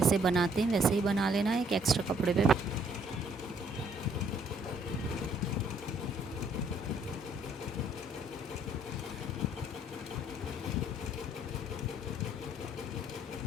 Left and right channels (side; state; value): both; normal; correlation 0.65